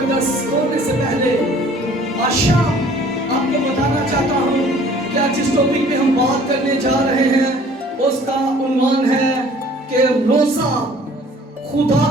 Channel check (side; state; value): both; normal; correlation 0.53